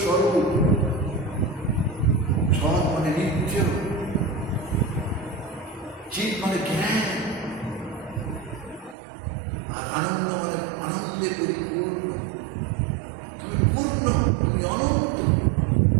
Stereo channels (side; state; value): left; drops out; at 9.0 s